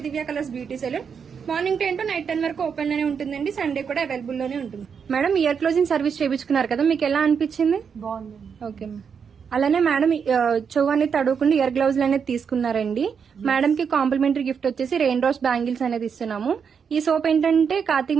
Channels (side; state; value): left; quieter; 6.6 dB